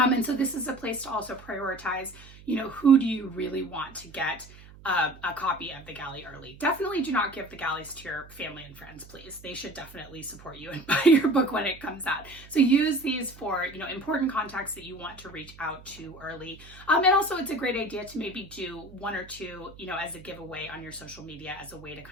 so this is a place to also prioritize, who do you really want to get a copy of the galley early. Definitely do not give the galleys to your family and friends, please. They should definitely support you and buy your book when it comes out. So use these for, important contacts that you want to reach out to early. And also it's a great idea to maybe do one or two, as a giveaway on your social media as a way to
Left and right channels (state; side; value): noise; right; hum, 20 dB below the sound